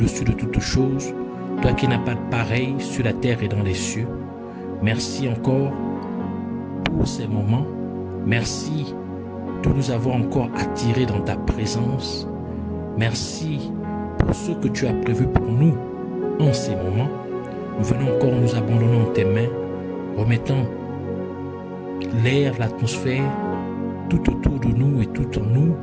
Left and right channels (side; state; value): both; identical; correlation 1.00